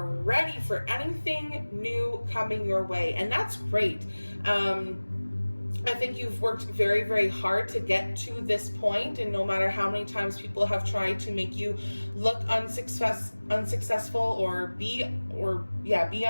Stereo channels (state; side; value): inverted; both; correlation -1.00